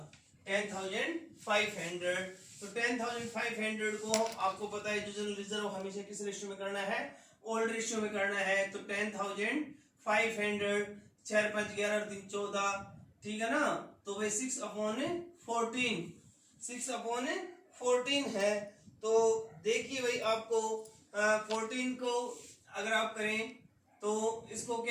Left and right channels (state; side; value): identical; both; correlation 1.00